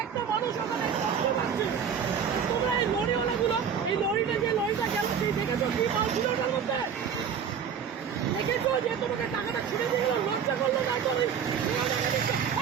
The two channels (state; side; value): quieter; left; 7.4 dB